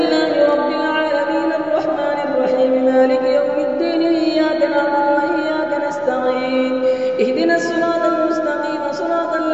رب العالمين الرحمن الرحيم مالك يوم الدين إياك نعبد وإياك نستعين اهدنا الصراط المستقيم صراط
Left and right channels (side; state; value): both; identical; correlation 1.00